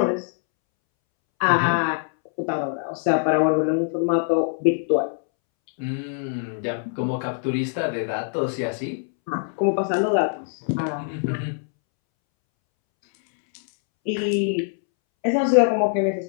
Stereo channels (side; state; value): right; silent; 63 dB below the other